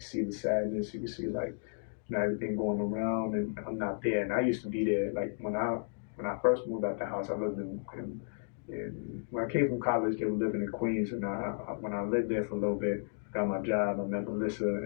see the sadness, you could see like everything going around, and I'm not there. And I used to be there. Like when I first moved out the house, I lived in when I came from college, they were living in Queens, and when I lived there for a little bit, got my job, I met Melissa,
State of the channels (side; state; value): right; silent; digital silence